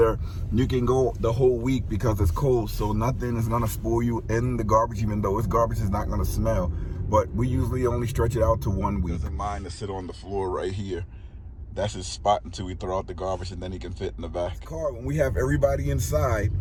you can go the whole week because it's cold, so nothing is gonna spoil you in the garbage, even though its garbage is not gonna smell. But we usually only stretch it out to 1 week. Doesn't mind to sit on the floor right here. That's his spot until we throw out the garbage, and then he can fit in the back. Car, when we have everybody inside,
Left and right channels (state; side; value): identical; both; correlation 1.00